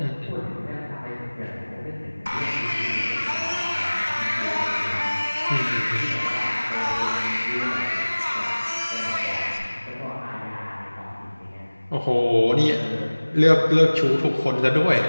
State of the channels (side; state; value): both; inverted; correlation -1.00